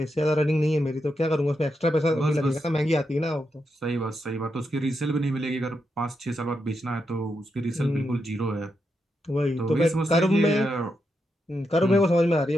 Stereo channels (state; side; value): normal; both; correlation 0.84